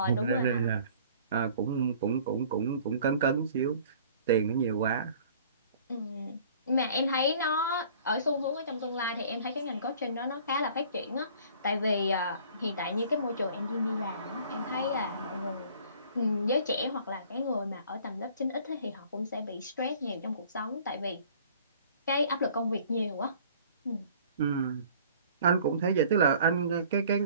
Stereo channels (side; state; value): both; inverted; correlation -0.52